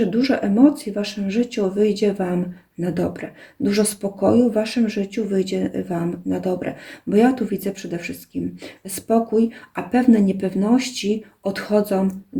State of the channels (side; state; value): both; identical; correlation 1.00